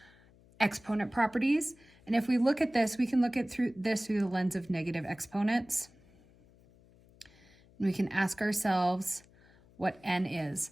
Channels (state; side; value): noise; left; hum, 27 dB below the sound